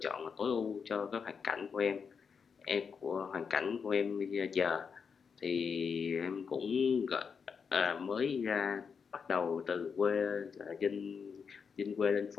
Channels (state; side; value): quieter; right; 6.0 dB